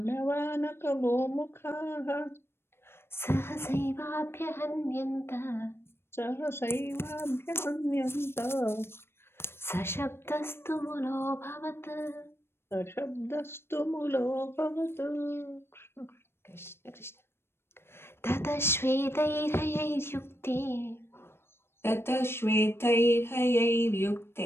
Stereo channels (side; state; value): right; late; 0.12 ms